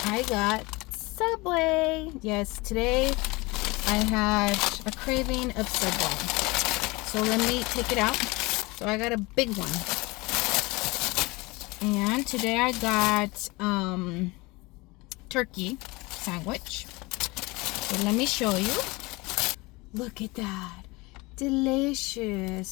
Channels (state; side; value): quieter; right; 23.8 dB